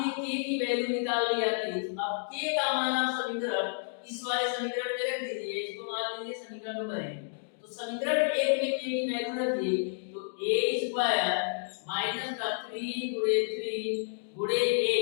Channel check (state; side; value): silent; right; digital silence